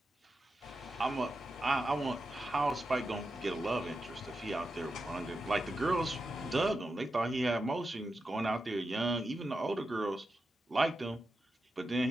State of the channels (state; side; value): normal; both; correlation 0.89